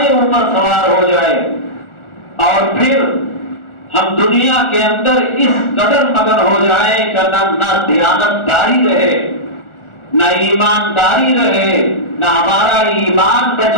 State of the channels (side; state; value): right; late; 1.4 ms